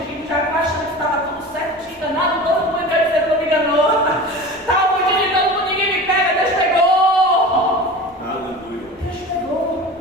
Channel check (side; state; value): both; normal; correlation 0.34